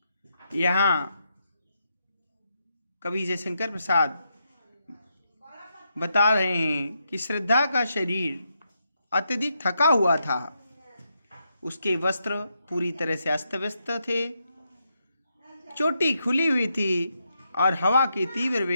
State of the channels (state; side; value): inverted; both; correlation -0.82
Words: यहाँ कवि जयशंकर प्रसाद बता रहे हैं कि श्रद्धा का शरीर अत्यधिक थका हुआ था, उसके वस्त्र पूरी तरह से अस्त व्यस्त थे, चोटी खुली हुई थी और हवा की तीव्र